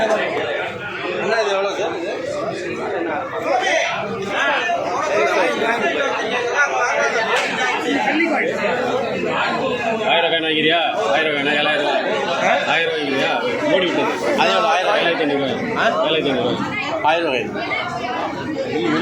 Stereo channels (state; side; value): identical; both; correlation 1.00